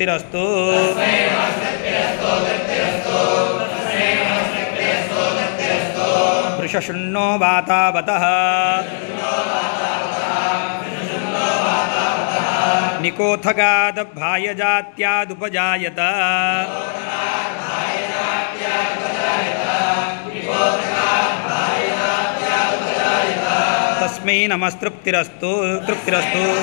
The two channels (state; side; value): silent; right; digital silence